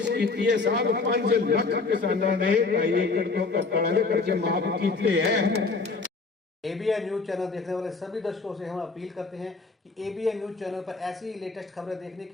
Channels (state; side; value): quieter; right; 4.0 dB